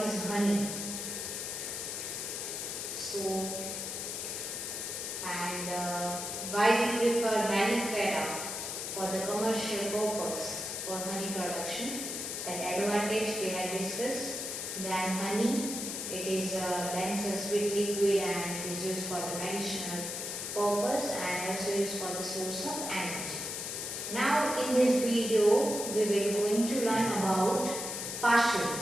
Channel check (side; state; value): left; noise; hiss, 4 dB below the sound